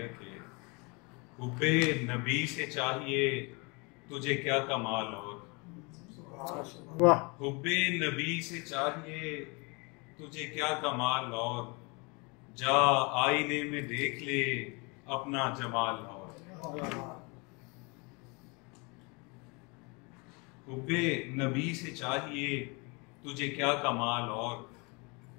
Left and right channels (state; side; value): quieter; right; 29.8 dB